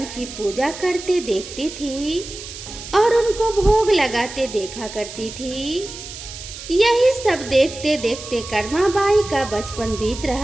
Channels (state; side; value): noise; right; hiss, 12 dB below the sound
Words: की पूजा करते देखती थी और उनको भोग लगाते देखा करती थी। यही सब देखते देखते कर्माबाई का बचपन बीत